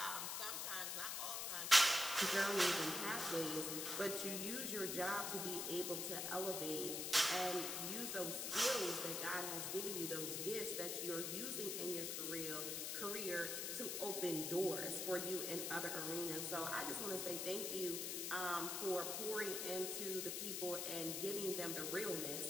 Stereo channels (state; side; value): noise; left; hiss, 2 dB below the sound